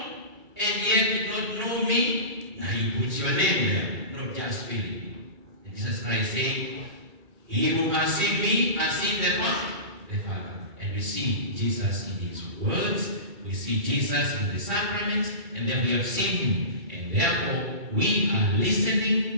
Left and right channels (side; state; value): left; late; 2.3 ms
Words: and yet did not know me? Now He puts your name there, not just Philip. And Jesus Christ saying, He who has seen me has seen the Father. And we see Jesus in His words, we see Jesus in the sacraments, and then we have seen Him. And therefore, we are